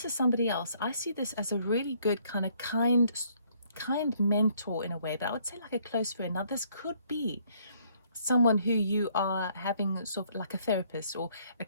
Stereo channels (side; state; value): both; inverted; correlation -0.66